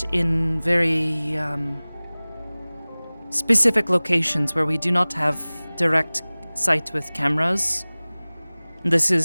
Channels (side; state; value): both; inverted; correlation -1.00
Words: in very specific locations where we do not have direct sight with cameras. This